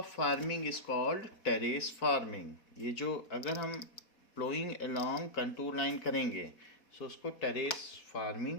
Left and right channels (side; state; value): right; late; 4.2 ms